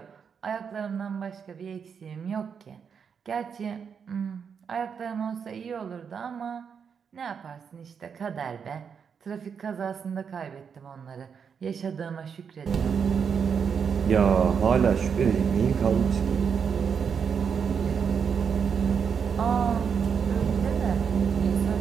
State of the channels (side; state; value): left; quieter; 6.7 dB